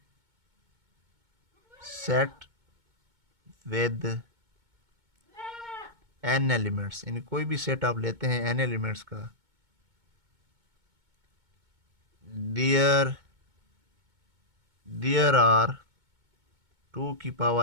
set with n elements, यानी कोई भी सेट आप लेते हैं n एलिमेंट्स का, देयर आर 2 की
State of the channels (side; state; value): left; late; 2.2 ms